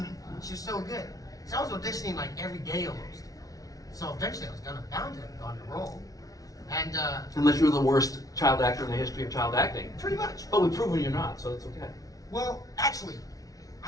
She was so good. So I was auditioning like every day almost. So eventually I was bound to have gone to role. And unless you were the worst child actor in the history of child acting. Pretty much. But we've proven you're not, so it's okay. Well, actually,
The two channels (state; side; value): late; right; 0.18 ms